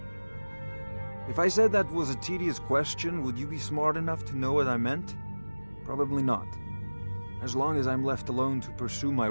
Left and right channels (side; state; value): both; inverted; correlation -1.00